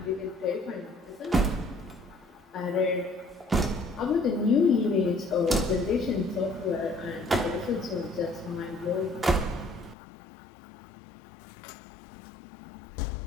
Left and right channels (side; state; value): right; drops out; at 10.0 s